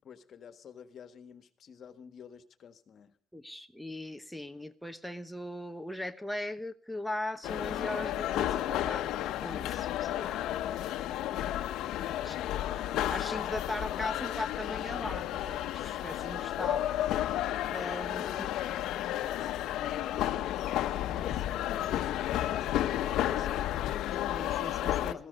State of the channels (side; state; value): right; quieter; 9.3 dB